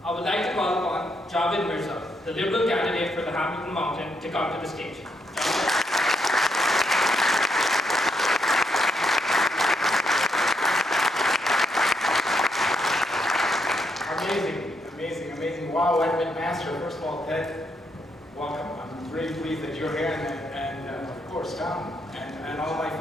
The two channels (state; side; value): normal; both; correlation 0.77